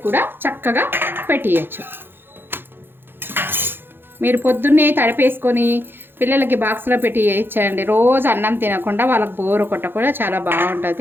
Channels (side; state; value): left; late; 0.10 ms